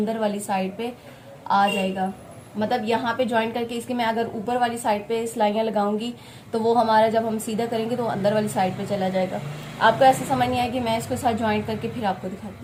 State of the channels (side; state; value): both; identical; correlation 1.00